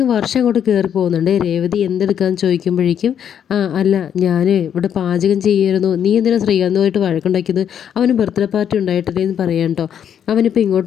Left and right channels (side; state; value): right; quieter; 8.9 dB